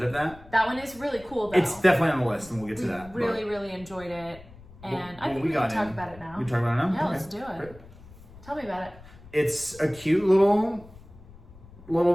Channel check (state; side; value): noise; left; rumble, 20 dB below the sound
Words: of that. That one is really cool, though. It's definitely on the list, and we'll get to that. Really, really enjoyed it. And I think we can talk about it now. We can talk about it now? Yeah, Okay. let's do it. Great. Tell me about it. It's a cute little